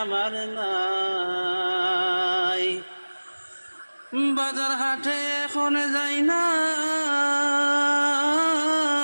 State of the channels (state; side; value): inverted; both; correlation -1.00